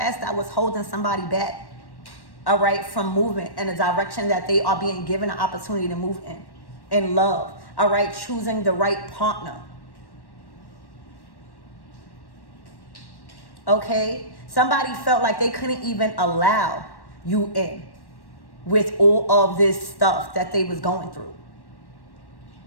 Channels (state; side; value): late; right; 1.1 ms